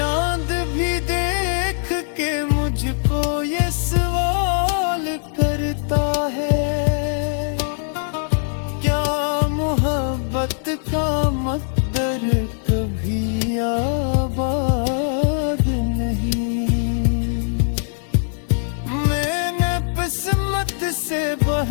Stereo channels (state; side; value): silent; right; digital silence